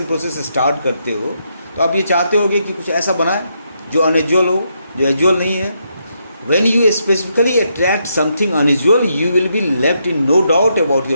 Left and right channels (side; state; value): both; inverted; correlation -0.79